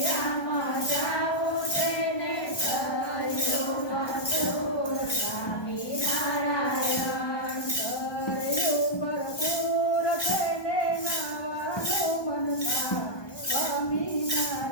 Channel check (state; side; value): late; right; 1.2 ms